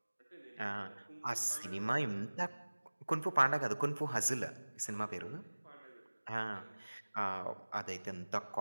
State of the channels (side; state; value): both; inverted; correlation -1.00